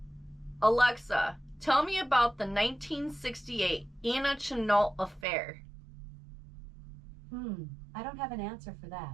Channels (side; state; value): left; drops out; at 5.2 s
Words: Alexa, tell me about the 1968 Anna Chennault affair. I don't have an answer for that.